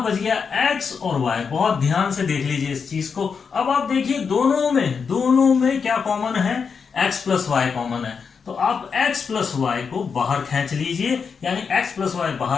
बच गया x और y। बहुत ध्यान से देख लीजिए इस चीज को। अब आप देखिए दोनों में क्या कॉमन है, x प्लस वाई कॉमन है, तो आप x प्लस वाई को बाहर खींच लीजिए, यानी x प्लस वाई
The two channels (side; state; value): right; quieter; 5.9 dB